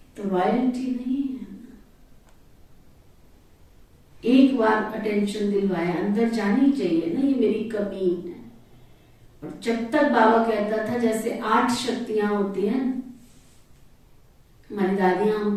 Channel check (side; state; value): both; identical; correlation 1.00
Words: तो रॉयल्टी नहीं है। एक बार अटेंशन दिलवाया, अंदर जानी चाहिए ना ये मेरी कमी है। और जब तक बाबा कहता था जैसे 8 शक्तियां होती हैं, हमारी दादियां